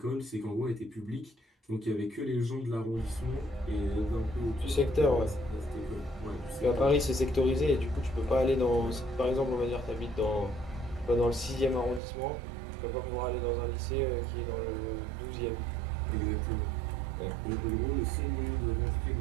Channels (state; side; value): drops out; left; at 12.0 s